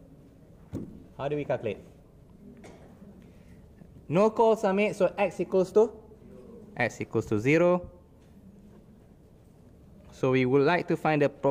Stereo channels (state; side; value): identical; both; correlation 1.00